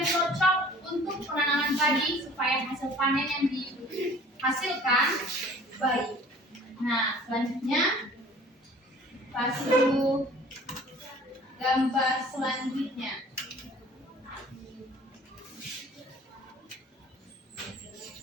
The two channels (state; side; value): normal; both; correlation 0.49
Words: cocok untuk penanaman padi supaya hasil panen yang dihasilkan baik. Nah, selanjutnya kasih gambar selanjutnya.